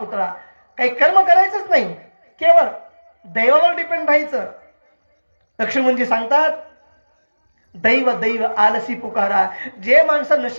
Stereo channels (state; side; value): inverted; both; correlation -1.00